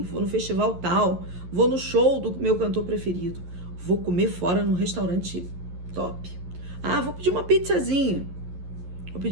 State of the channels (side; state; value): left; late; 11 ms